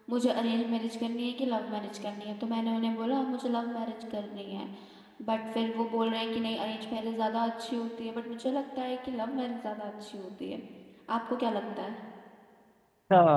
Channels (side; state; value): both; identical; correlation 1.00